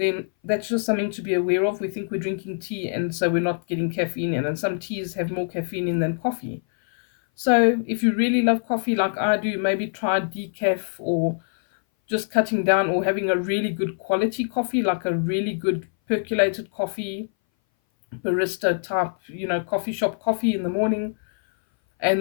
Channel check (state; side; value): silent; right; 59 dB below the other